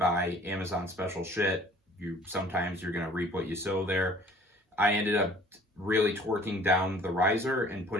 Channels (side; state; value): both; normal; correlation 0.52